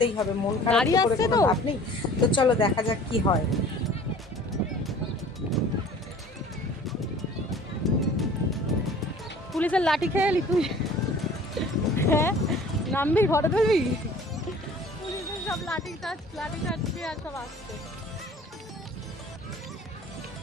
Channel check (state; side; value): normal; both; correlation 0.48